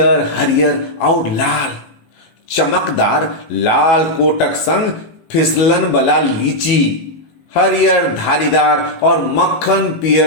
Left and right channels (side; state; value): right; late; 18 ms